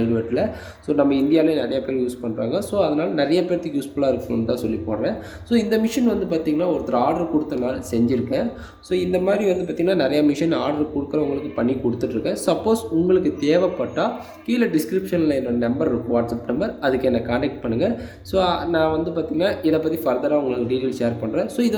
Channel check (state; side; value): identical; both; correlation 1.00